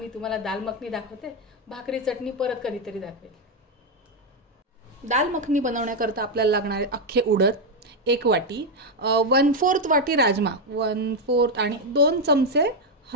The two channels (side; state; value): both; normal; correlation 0.04